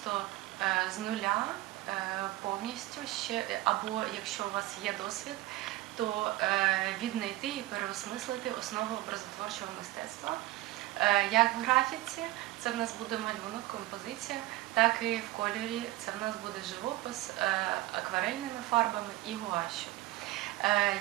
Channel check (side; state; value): left; quieter; 17.3 dB